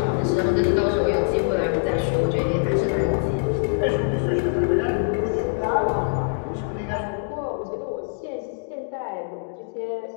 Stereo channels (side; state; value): right; silent; digital silence